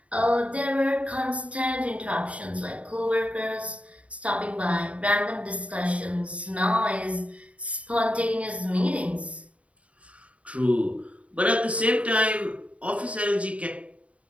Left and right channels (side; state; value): left; late; 0.065 ms